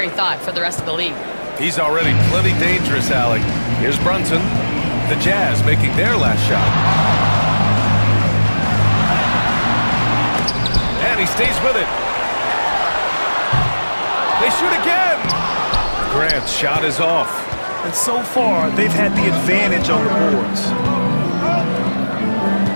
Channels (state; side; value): inverted; both; correlation -1.00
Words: thought for the rest of the league. He's already plenty dangerous, Allie. Here's Brunson. The Jazz making their last shot. And he stays with it. They shoot again. Grant's shot is off. And so far, they've had the advantage on the boards.